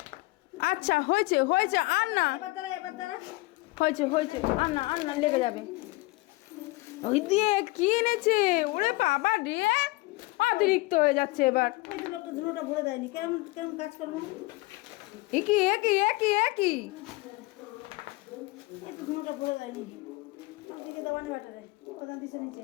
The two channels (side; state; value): right; quieter; 22.1 dB